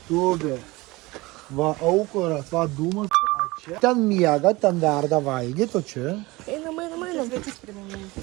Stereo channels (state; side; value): quieter; left; 21.9 dB